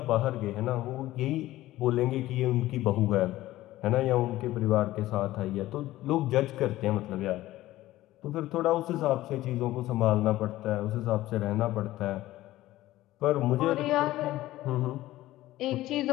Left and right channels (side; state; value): right; quieter; 16.0 dB